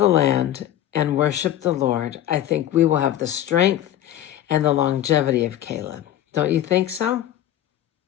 land, and worship the Lord, I think we will have the strength and the longevity of Caleb. Don't you think so?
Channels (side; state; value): right; quieter; 12.1 dB